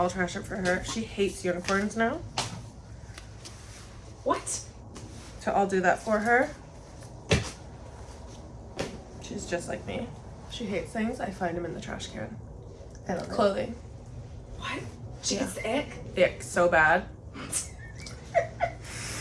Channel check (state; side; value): identical; both; correlation 1.00